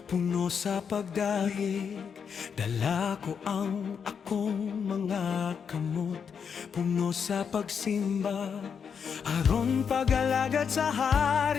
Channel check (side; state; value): right; quieter; 6.8 dB